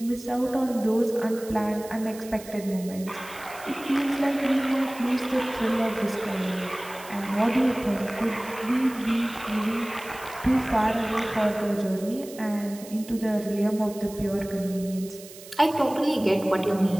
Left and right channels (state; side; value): noise; right; hiss, 17 dB below the sound